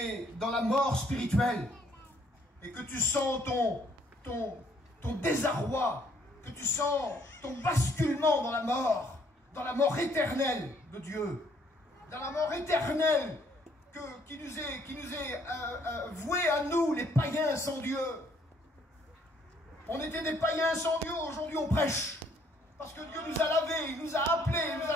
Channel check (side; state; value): both; normal; correlation 0.65